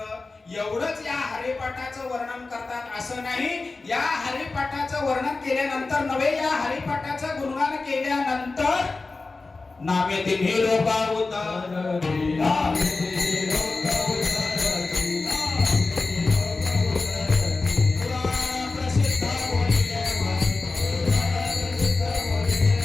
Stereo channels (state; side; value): quieter; right; 3.7 dB